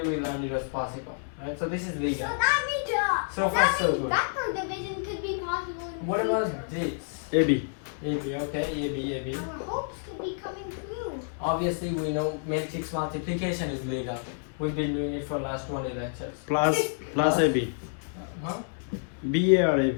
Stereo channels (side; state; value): right; silent; digital silence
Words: we learned it was possible, right? So this is legal. So that means, So far, so good. vector division could be possible. In What the about future. this? AB. AB, okay, AB. Our hopes could be coming true. Obviously, we know matrix multiplication is legal. We've been doing it for last 20 lectures. Plus AB. Huh? BA or